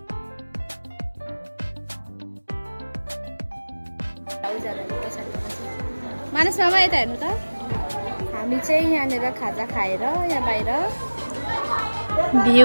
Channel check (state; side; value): inverted; both; correlation -1.00